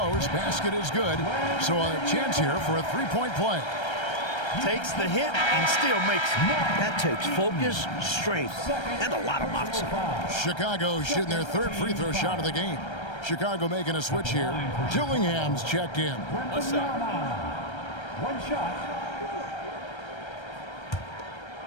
Basket is good. So a chance here for a 3-point play. Takes the hit and still makes it. That takes focus, strength, and a lot of moxie. Chicago shooting their 3rd free throw shot of the game. Chicago making a switch here. Dillingham's checked in. What's up? 1 shot.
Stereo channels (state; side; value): late; right; 1.3 ms